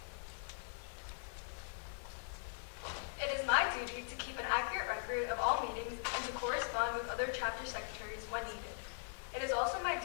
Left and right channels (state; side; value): silent; right; 51 dB below the other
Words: It is my duty to keep an accurate record of all meetings and to correspond with other chapter secretaries when needed. It is also my